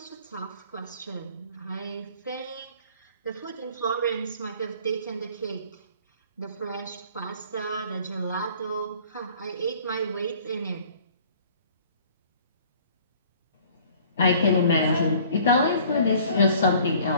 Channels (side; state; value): both; inverted; correlation -0.52